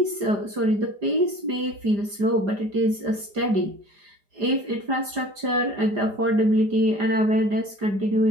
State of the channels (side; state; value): left; late; 4.9 ms